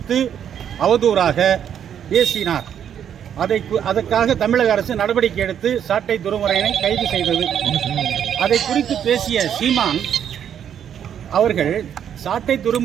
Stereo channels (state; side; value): quieter; left; 9.0 dB